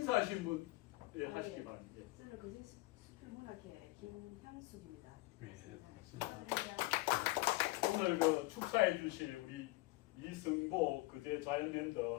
분 하시기 바랍니다. 저는 거제 수필 문학회 김향숙입니다. 네, 축하드립니다. 오늘 그 축사해 주실 우리 이승보 그제 자연랜드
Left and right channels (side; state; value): right; quieter; 20.7 dB